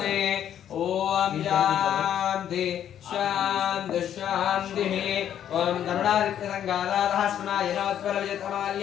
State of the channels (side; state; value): right; quieter; 10.1 dB